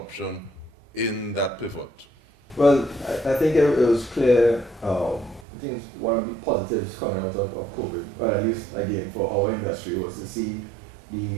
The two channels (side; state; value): left; drops out; at 5.5 s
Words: in that pivot? Well, I think it was clear. I think one of the positives coming out of COVID, or at least again for our industry, was to see